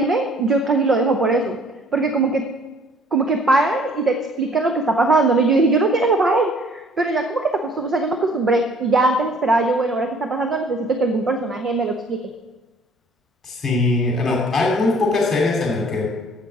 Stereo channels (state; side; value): normal; both; correlation 0.56